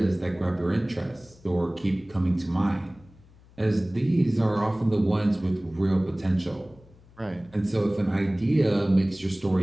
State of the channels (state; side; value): noise; left; hum, 26 dB below the sound